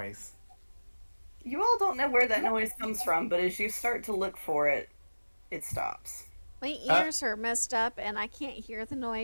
You all don't know where that noise comes from, but as you start to look for it, it stops. My ears are messed up and I can't hear the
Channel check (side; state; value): both; inverted; correlation -1.00